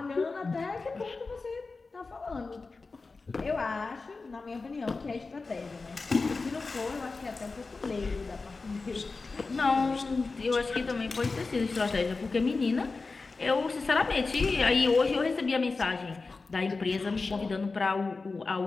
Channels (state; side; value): quieter; right; 4.0 dB